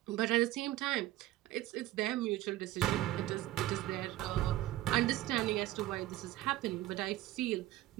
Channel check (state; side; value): quieter; left; 15.5 dB